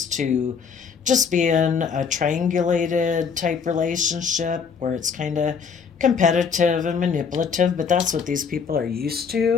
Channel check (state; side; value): quieter; right; 6.1 dB